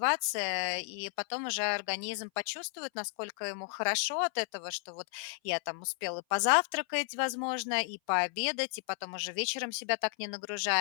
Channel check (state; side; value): silent; right; 56 dB below the other